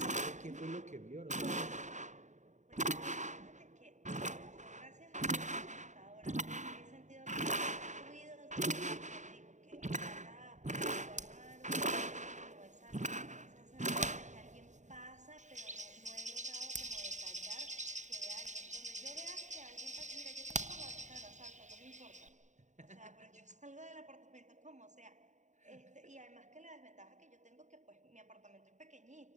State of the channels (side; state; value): left; late; 0.35 ms